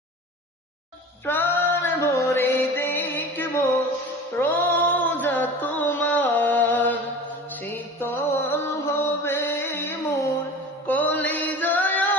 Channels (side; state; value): both; normal; correlation 0.37